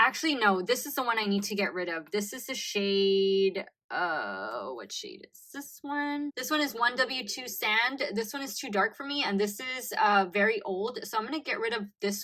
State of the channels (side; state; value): both; identical; correlation 1.00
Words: no, this is the one I need to get rid of. This is the shade, what shade is this one? This one is 1W2 Sand. This one is too dark for me, and this is very old, so I'm gonna get rid of